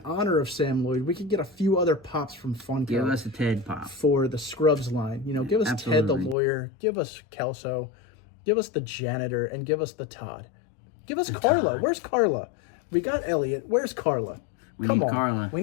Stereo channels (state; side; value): drops out; right; at 6.4 s